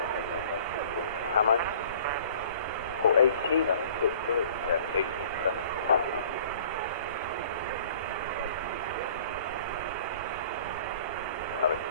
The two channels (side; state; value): both; inverted; correlation -0.50